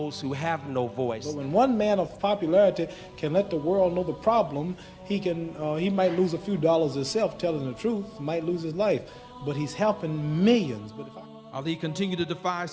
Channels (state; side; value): identical; both; correlation 1.00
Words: who have no voice. But when one man of popularity can let the world know the problem, he might lose a few dollars himself telling the truth, might lose his life, but he's helping millions. But Ali continued to defy